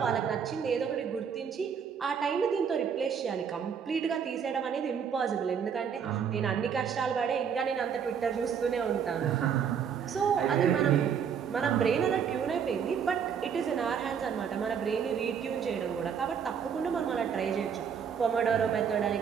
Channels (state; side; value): quieter; left; 7.4 dB